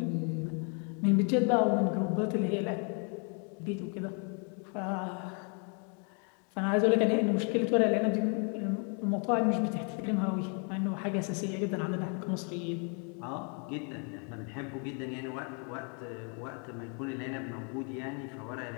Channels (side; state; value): right; quieter; 38.9 dB